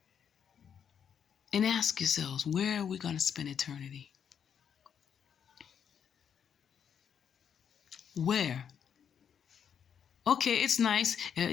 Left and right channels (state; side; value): quieter; right; 7.9 dB